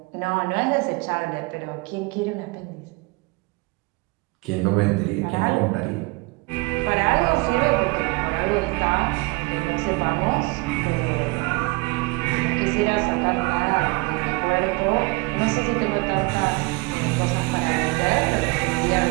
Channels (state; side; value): quieter; left; 26.5 dB